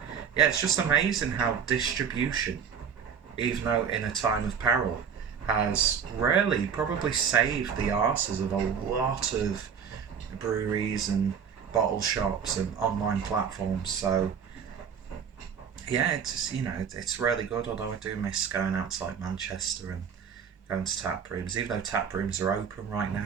it's just amazing how distribution, even though in a time of peril, has really probably saved the arses of a lot of breweries and bottle shops and online platforms. So yeah, it's it's really good. Although I do miss going out to like Manchester and going to tap rooms. Even though tap rooms are open right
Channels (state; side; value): quieter; left; 7.2 dB